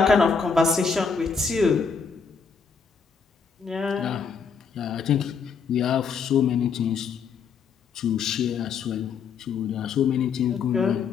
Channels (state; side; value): quieter; right; 5.8 dB